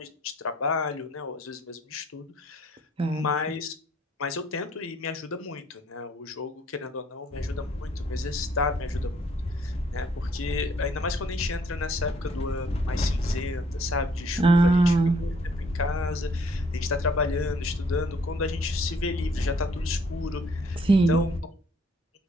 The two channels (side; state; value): both; normal; correlation 0.63